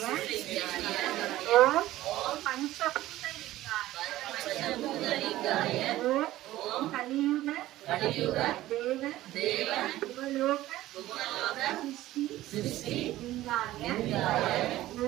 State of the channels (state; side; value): quieter; left; 15.5 dB